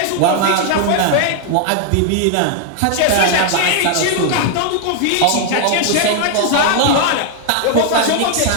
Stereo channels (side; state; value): both; different; correlation 0.00